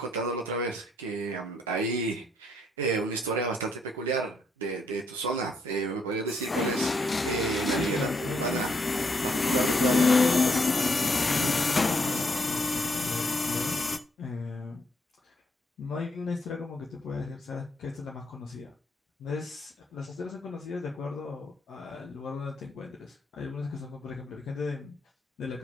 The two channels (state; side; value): normal; both; correlation 0.73